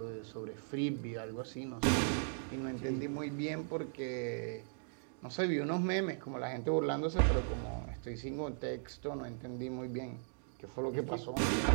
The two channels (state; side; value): silent; left; digital silence